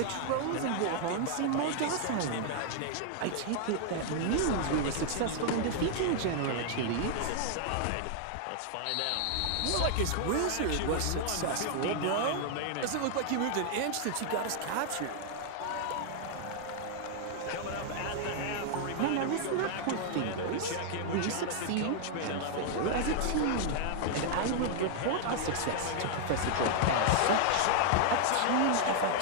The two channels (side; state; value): both; different; correlation 0.00